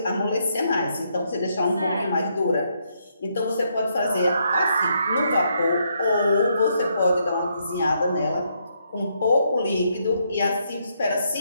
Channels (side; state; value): both; inverted; correlation -0.76